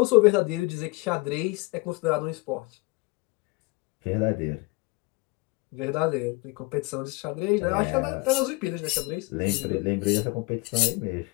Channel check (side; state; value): right; quieter; 25.8 dB